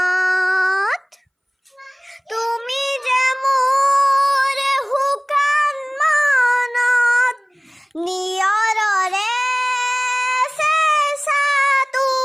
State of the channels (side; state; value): both; identical; correlation 1.00